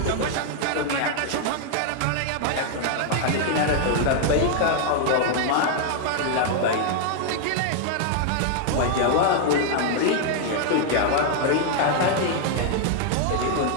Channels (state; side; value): different; both; correlation 0.00